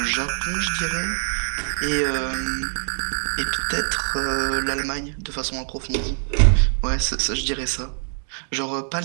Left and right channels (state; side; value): silent; left; digital silence